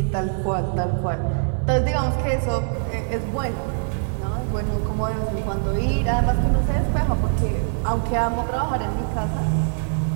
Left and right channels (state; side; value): silent; left; digital silence